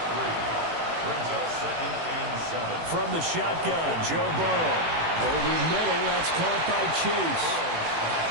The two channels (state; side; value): late; left; 18 ms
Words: 3. Brings up second and 7. From the shotgun, Joe Burrow. Over middle, that's caught by Chase.